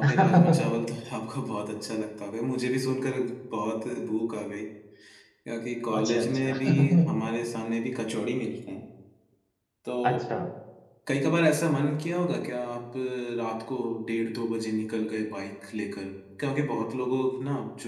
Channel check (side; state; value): both; identical; correlation 1.00